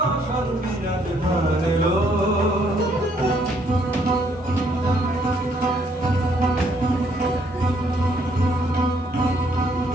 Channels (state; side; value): normal; both; correlation 0.68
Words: অশান্তি আজ হারলো